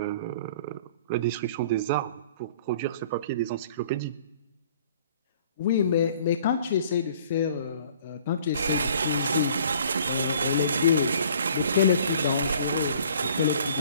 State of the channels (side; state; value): both; inverted; correlation -0.53